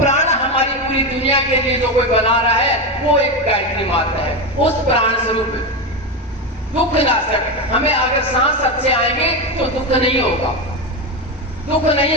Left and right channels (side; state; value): both; normal; correlation 0.14